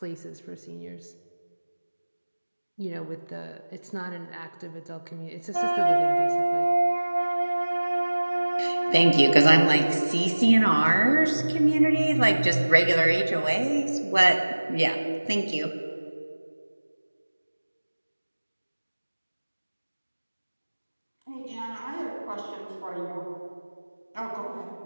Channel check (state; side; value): inverted; both; correlation -1.00